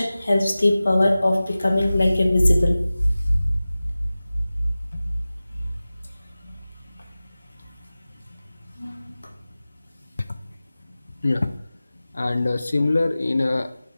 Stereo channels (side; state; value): both; inverted; correlation -0.97